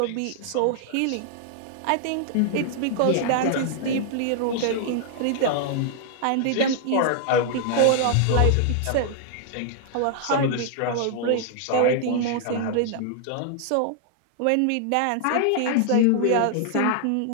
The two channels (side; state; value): both; different; correlation -0.01